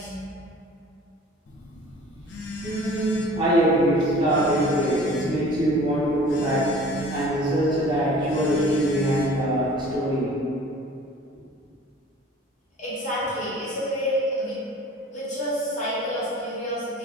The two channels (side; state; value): both; normal; correlation 0.46